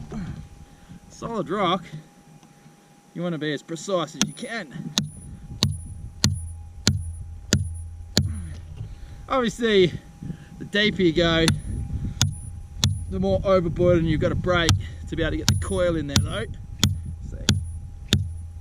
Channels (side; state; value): both; identical; correlation 1.00